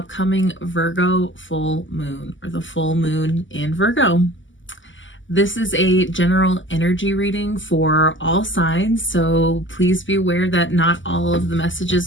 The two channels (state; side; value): late; right; 0.55 ms